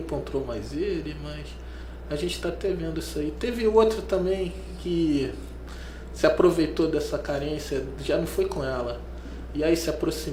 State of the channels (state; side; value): identical; both; correlation 1.00